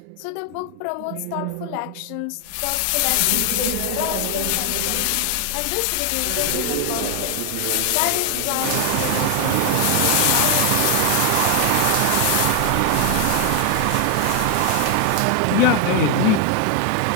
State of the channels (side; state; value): both; different; correlation 0.00